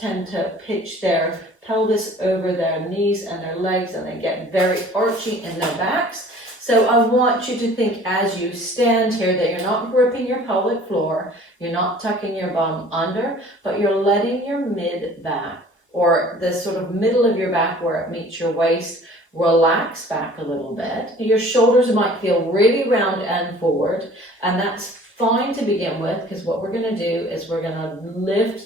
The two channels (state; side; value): normal; both; correlation 0.49